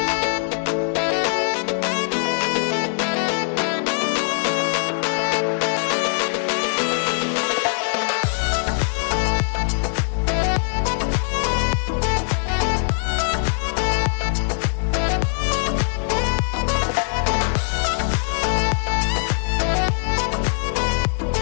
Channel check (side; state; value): right; silent; digital silence